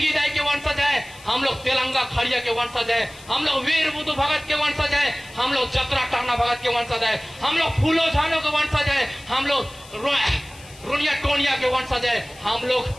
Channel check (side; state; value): left; noise; hiss, 21 dB below the sound